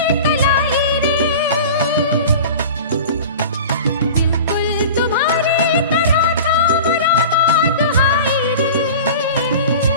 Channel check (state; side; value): inverted; both; correlation -0.35